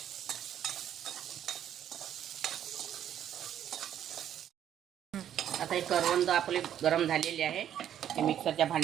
आता हे करवंद आपले गरम झालेले आहे, हे मिक्सरच्या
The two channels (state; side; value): quieter; left; 10.3 dB